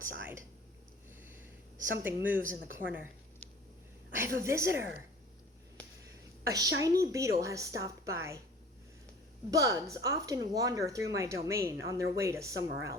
Something moves in the corner. I have a visitor. A shiny beetle has stopped by. Bugs often wander through my domain on their way to somewhere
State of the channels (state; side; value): normal; both; correlation 0.45